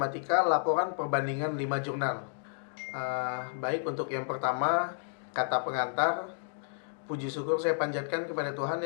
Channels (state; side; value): silent; right; digital silence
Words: Laporan Perbandingan 5 Jurnal. Baik, untuk yang pertama, kata pengantar. Puji syukur saya panjatkan kepada Tuhan